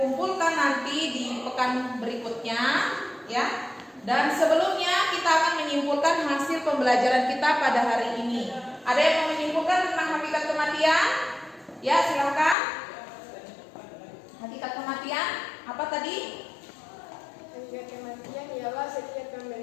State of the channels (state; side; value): drops out; right; at 12.6 s